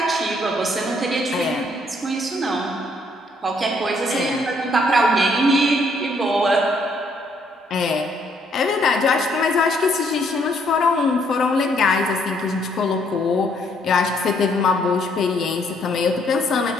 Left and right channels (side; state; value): both; normal; correlation 0.68